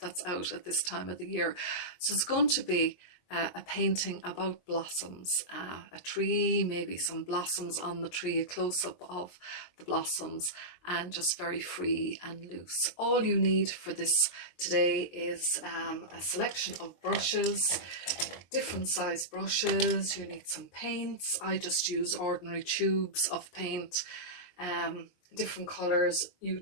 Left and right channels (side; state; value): right; late; 22 ms